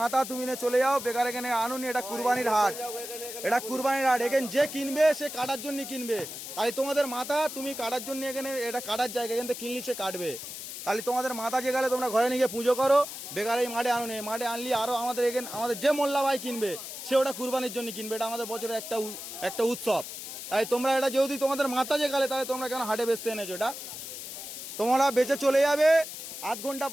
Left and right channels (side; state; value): left; noise; hiss, 9 dB below the sound